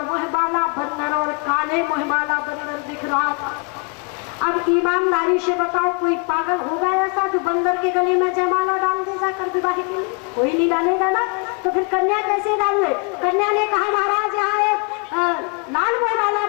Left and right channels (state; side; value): quieter; right; 36.1 dB